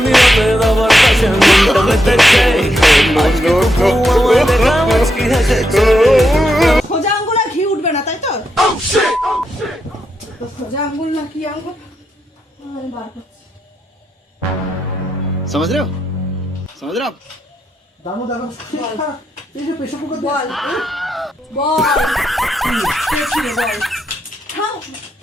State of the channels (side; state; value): both; normal; correlation 0.82